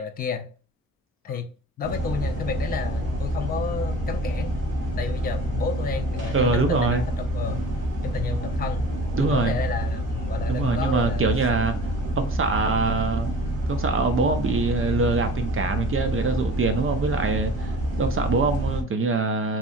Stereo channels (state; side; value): normal; both; correlation 0.42